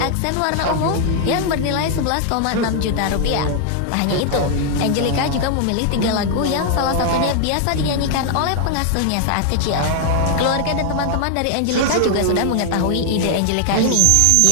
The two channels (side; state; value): both; different; correlation 0.00